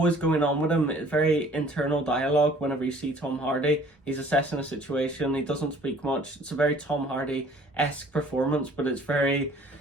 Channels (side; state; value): both; normal; correlation 0.54